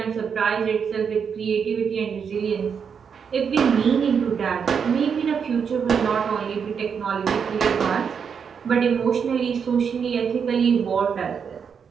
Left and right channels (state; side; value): quieter; left; 6.7 dB